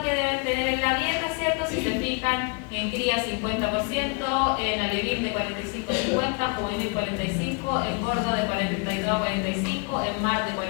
que deben tener en la dieta, ¿cierto? Si se fijan, en cría 50%, en alevín de 45 a 50, juvenil 45, engorda de 42 a 45, en mar de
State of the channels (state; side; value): quieter; right; 33.8 dB